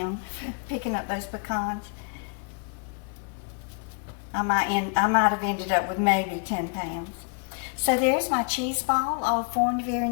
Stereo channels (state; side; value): quieter; right; 38.0 dB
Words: for picking up those pecans. I might have ended up with maybe 10 pounds. So there's my cheese ball all formed very